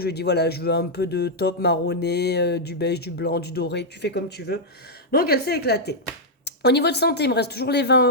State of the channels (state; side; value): normal; both; correlation -0.05